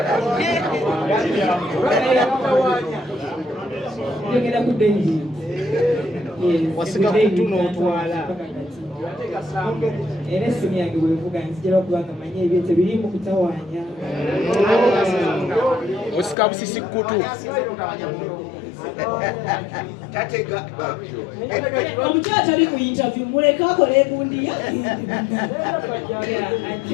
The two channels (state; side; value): drops out; right; at 16.4 s